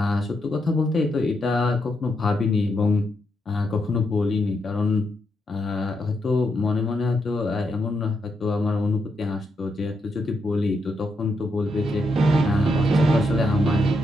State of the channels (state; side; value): normal; both; correlation 0.81